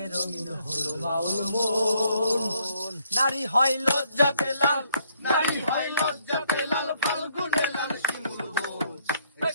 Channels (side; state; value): both; inverted; correlation -0.69